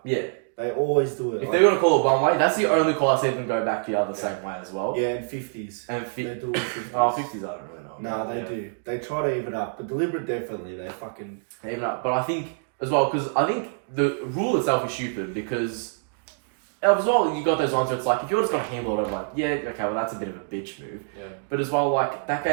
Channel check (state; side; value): silent; left; digital silence